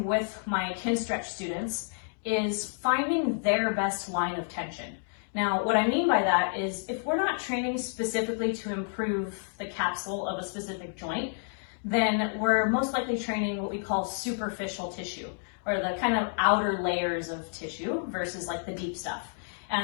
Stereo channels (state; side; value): silent; right; digital silence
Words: with my Kinstretch students is finding their best line of tension. Now, what I mean by that is if we're not training specifically to improve the capsule of a specific joint, then we're most likely training what we call superficial tissue, or the kind of outer layers of tissue versus like the deep stuff.